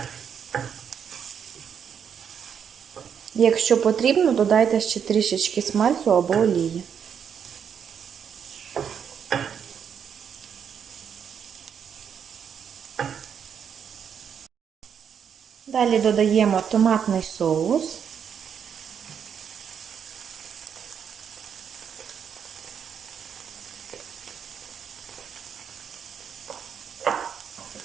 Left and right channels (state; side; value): quieter; left; 7.7 dB